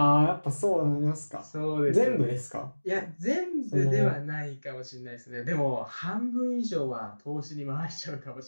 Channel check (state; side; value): inverted; both; correlation -1.00